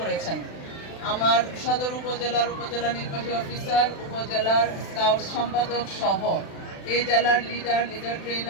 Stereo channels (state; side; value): late; right; 36 ms